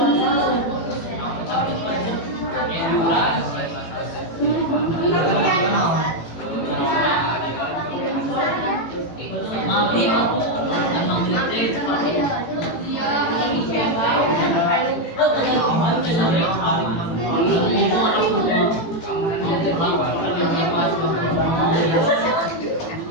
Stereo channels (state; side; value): late; right; 18 ms